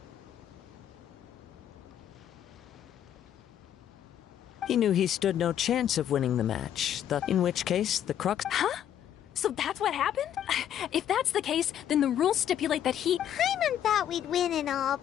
He knew he stood no chance of winning the match, in which case the Crux— Huh? So that's what happened? If that's the case, then the rules stipulate that he— Paimon thought we'd win and all,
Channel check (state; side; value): quieter; right; 10.3 dB